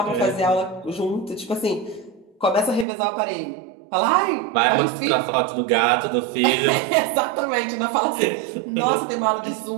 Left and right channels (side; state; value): left; drops out; at 2.9 s